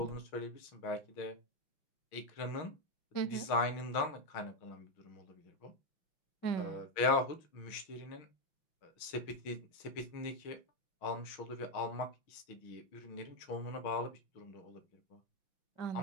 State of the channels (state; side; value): late; right; 6.3 ms